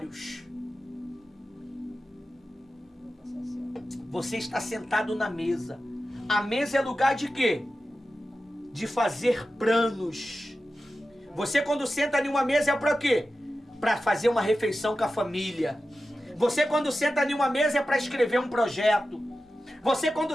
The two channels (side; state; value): both; normal; correlation 0.93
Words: Você está sentado na mesa. A mesa é lugar de quê? De fazer planos. Você quando senta em uma mesa é para quê? Para fazer uma refeição com a família. Você quando senta em uma mesa é para escrever um projeto. Você quando